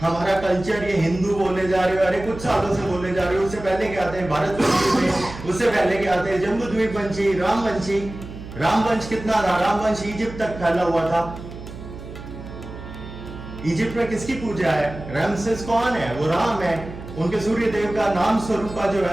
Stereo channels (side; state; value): right; noise; hum, 12 dB below the sound